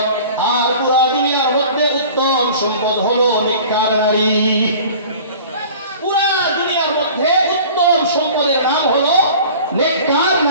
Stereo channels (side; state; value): both; inverted; correlation -0.43